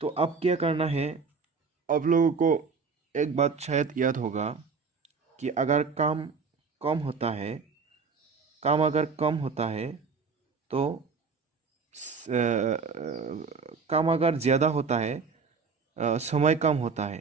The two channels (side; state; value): left; quieter; 5.2 dB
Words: तो अब क्या करना है, आप लोगों को एक बात शायद याद होगा कि अगर काम कम होता है, काम अगर कम होता है तो काम अगर ज़्यादा होता है, समय कम होता